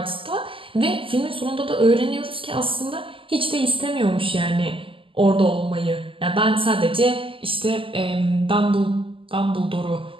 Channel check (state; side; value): late; left; 0.25 ms